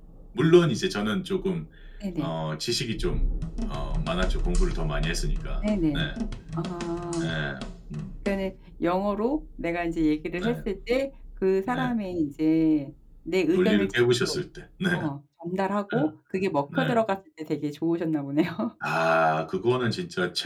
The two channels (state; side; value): identical; both; correlation 1.00